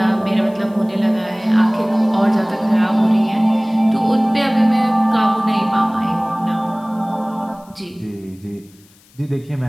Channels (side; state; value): left; noise; hiss, 29 dB below the sound